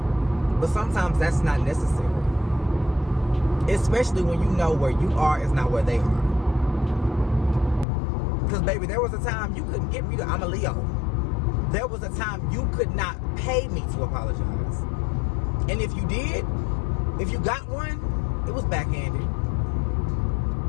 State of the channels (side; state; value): right; drops out; at 7.9 s